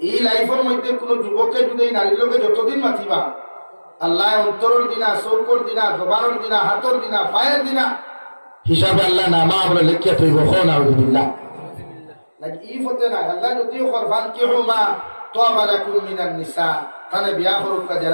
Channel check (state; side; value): inverted; both; correlation -1.00